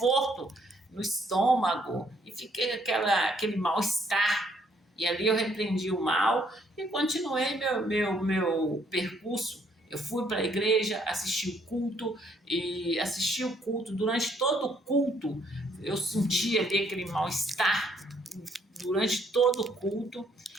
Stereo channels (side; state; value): both; normal; correlation 0.67